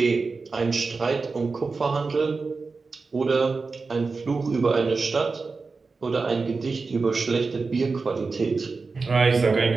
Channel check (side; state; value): left; quieter; 4.3 dB